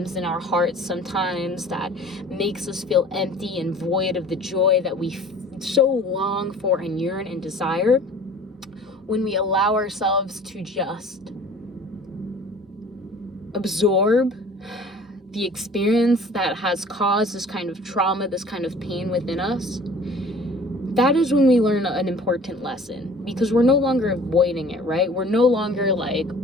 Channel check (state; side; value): normal; both; correlation 0.47